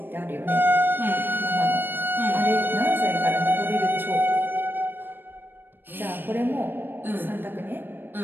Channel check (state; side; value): late; left; 0.096 ms